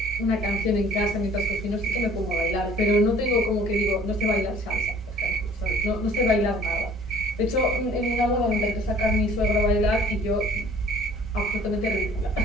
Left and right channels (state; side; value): normal; both; correlation 0.52